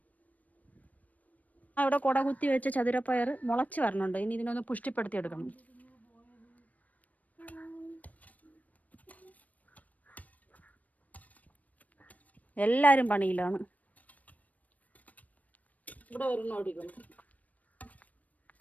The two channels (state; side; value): late; right; 0.073 ms